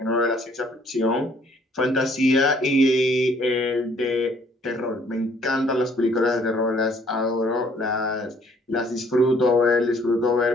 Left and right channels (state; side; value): normal; both; correlation 0.61